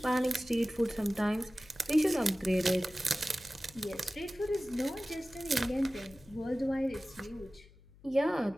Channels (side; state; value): left; noise; hum, 24 dB below the sound